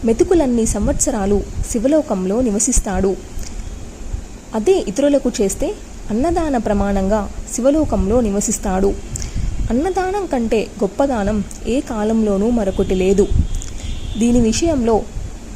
మెతుకులన్నీ సంవత్సరాలు శివలోకంలో నివసిస్తాడు. అదే ఇతరులకు చేస్తే అన్నదాన ప్రమాణంగా శివలోకంలో నివసిస్తాడు. అన్నదానం కంటే గొప్పదానం ఏ కాలంలోనూ మరొకటి లేదు. దీని విషయంలో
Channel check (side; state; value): both; identical; correlation 1.00